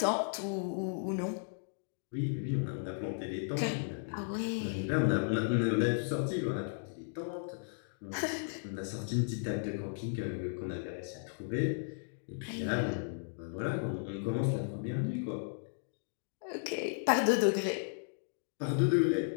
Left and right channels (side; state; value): right; silent; digital silence